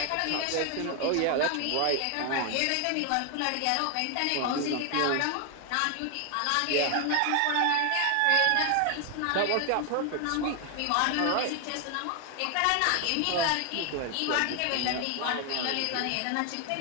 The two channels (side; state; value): both; different; correlation 0.01